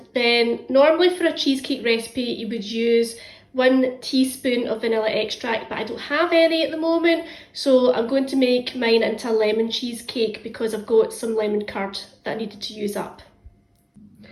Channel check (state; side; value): identical; both; correlation 1.00